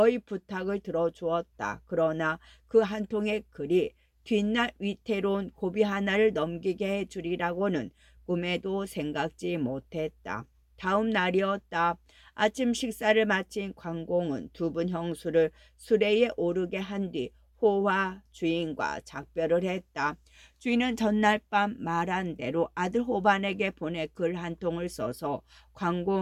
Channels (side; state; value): both; identical; correlation 1.00